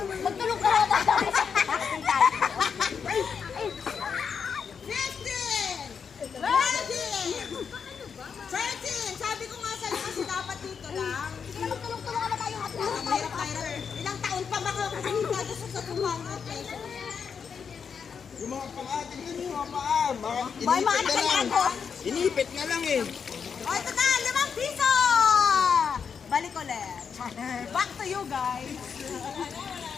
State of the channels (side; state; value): right; quieter; 6.5 dB